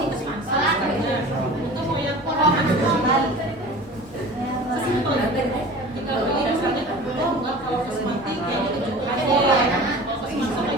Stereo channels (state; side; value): normal; both; correlation 0.39